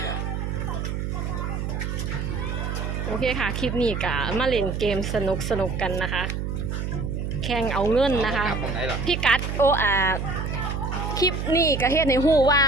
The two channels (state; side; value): noise; right; hum, 3 dB below the sound